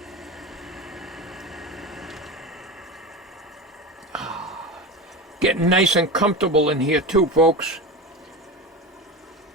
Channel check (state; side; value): normal; both; correlation 0.24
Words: Getting nice and comfortable in here too, folks.